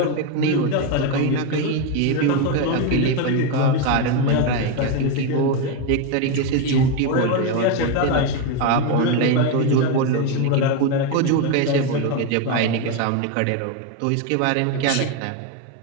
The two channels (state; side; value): different; both; correlation 0.03